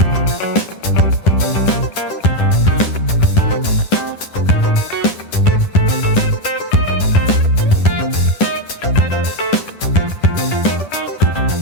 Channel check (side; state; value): right; late; 10 ms